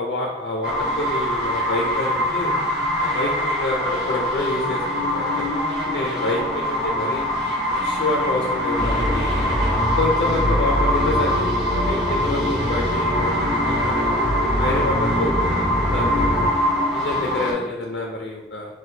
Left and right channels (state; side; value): normal; both; correlation 0.38